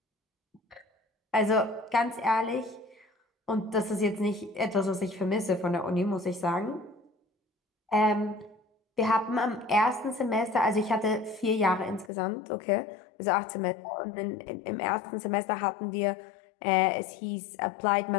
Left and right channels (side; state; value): right; drops out; at 12.1 s